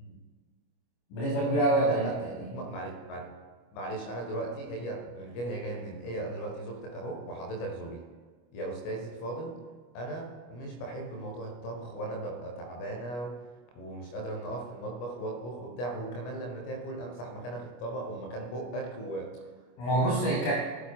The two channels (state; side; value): late; right; 25 ms